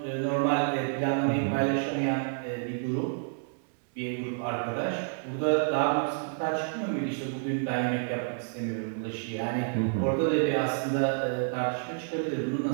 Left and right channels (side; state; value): left; silent; digital silence